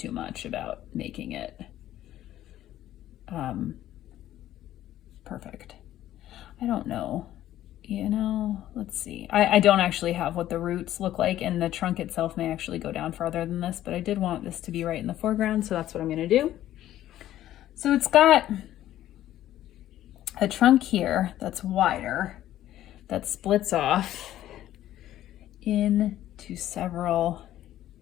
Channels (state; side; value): quieter; right; 13.1 dB